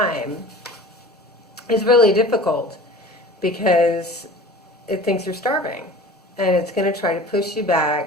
is really difficult because it thinks you're starving, and it's going to try to push you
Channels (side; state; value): both; normal; correlation 0.40